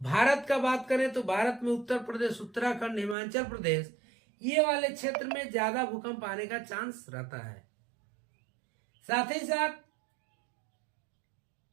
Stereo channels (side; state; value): left; drops out; at 3.2 s